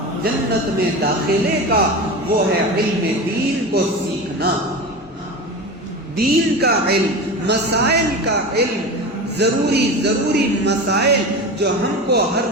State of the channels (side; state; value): both; normal; correlation 0.27